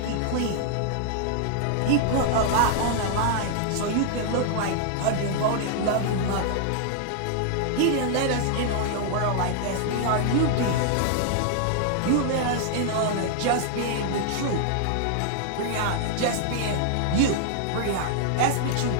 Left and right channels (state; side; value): different; both; correlation -0.01